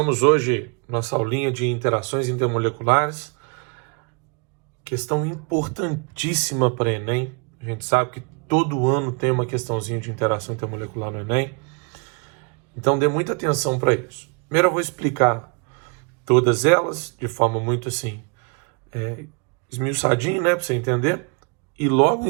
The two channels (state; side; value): quieter; left; 35.1 dB